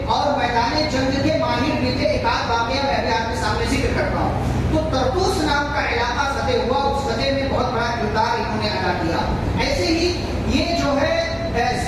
اور میدان جنگ کے ماہر بھی تھے. ایک آدھ واقعہ میں ابھی آپ کے سامنے ذکر کرتا ہوں. تو طرطوس نام کا علاقہ فتح ہوا, اس فتح میں بہت بڑا کردار انہوں نے ادا کیا. ایسے ہی یہ جو ہے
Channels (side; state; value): both; identical; correlation 1.00